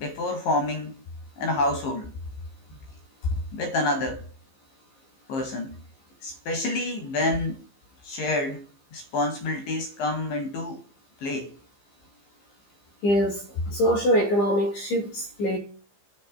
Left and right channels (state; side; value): late; right; 15 ms